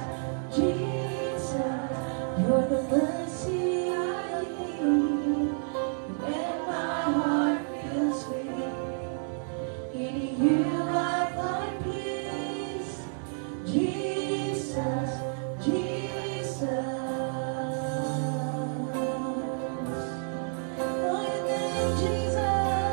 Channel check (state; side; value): silent; left; digital silence